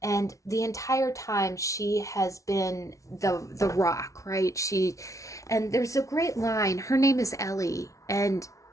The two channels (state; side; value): late; right; 0.15 ms